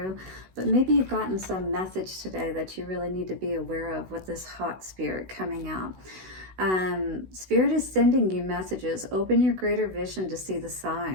But maybe you've gotten some message today that you really need to be aware of with this hot spirit coming out. Spirit is sending you messages. Open your greater vision to see the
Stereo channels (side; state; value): left; late; 16 ms